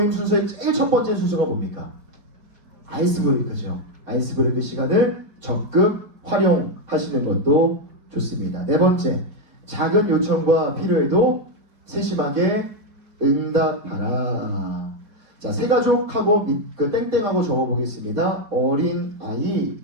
순서의 제일 첫 번째 순서가 뭡니까? 아이스 브레이크죠. 아이스 브레이크 시간을 적극 활용하시는 것도 좋습니다. 네 번째, 작은 요청과 필요에도 세심하게 응답하라. 자, 새 가족하고 그 땡땡하고 적어보겠습니다. 어린 아이,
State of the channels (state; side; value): late; left; 4.5 ms